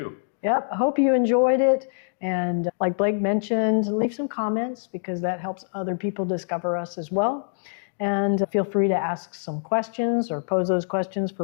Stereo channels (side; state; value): right; silent; digital silence